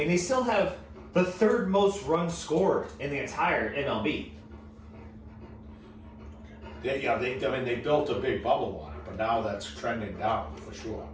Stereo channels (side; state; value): both; identical; correlation 1.00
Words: they still have the third most runs scored in the entire MLB. they built a big bubble on it, but now that's trending down for sure.